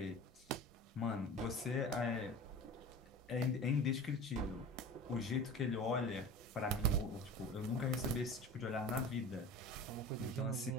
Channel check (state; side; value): normal; both; correlation 0.36